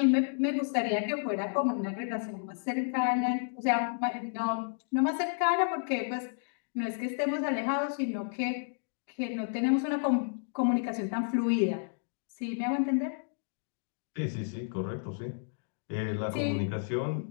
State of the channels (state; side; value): silent; right; digital silence